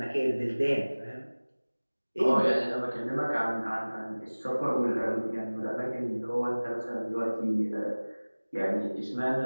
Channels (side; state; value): both; inverted; correlation -1.00